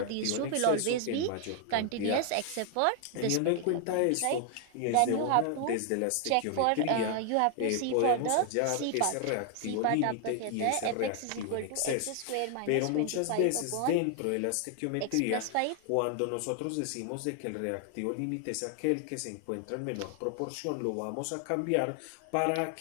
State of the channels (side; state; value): both; different; correlation 0.00